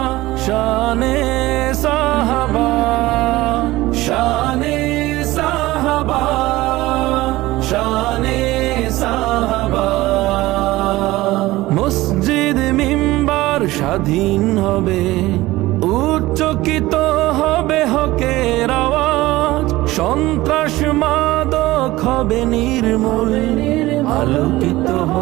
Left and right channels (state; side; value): quieter; left; 18.2 dB